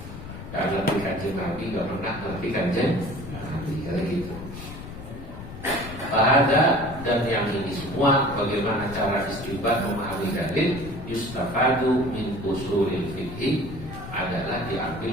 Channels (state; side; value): noise; left; rumble, 11 dB below the sound